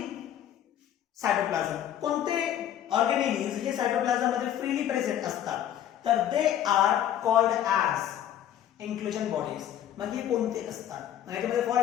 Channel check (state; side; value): quieter; right; 10.9 dB